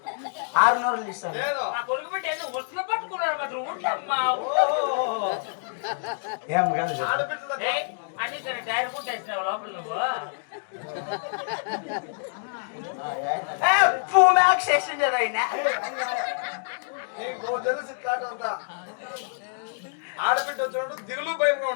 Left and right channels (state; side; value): silent; right; digital silence